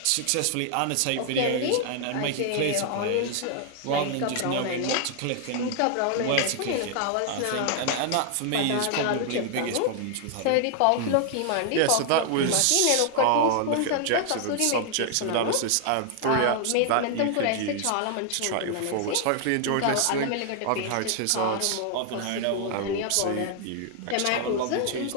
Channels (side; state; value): both; different; correlation 0.00